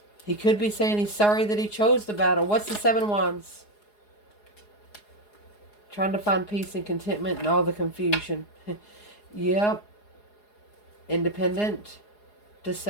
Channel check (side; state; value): right; late; 4.8 ms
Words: He could be saying he's sorry that he chose the battle. What's the 7 Wands? Trying to find peace and contentment in all the confusion. Yep. Independent.